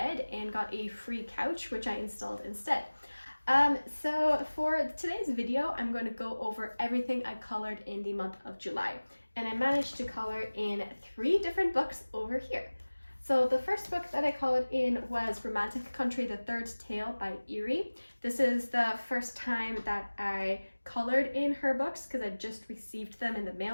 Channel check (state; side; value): inverted; both; correlation -1.00